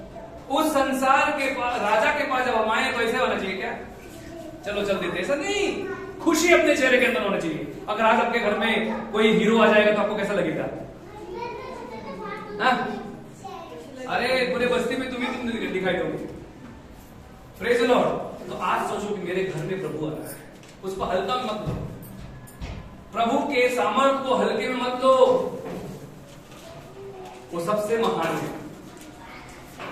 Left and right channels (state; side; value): identical; both; correlation 1.00